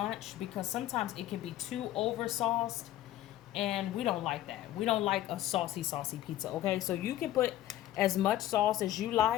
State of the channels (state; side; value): quieter; right; 13.7 dB